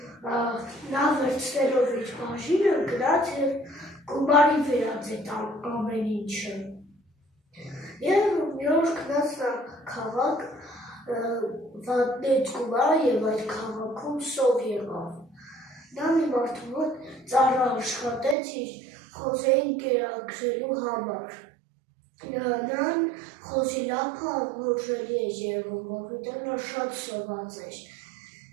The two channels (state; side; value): drops out; left; at 18.4 s